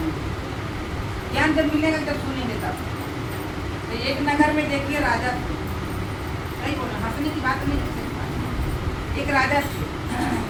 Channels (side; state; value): both; identical; correlation 1.00